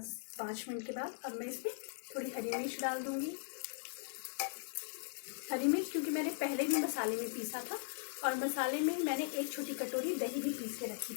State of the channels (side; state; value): right; silent; digital silence